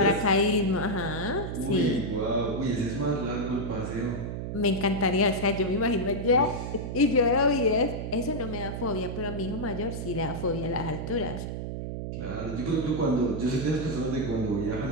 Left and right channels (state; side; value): noise; right; hum, 5 dB below the sound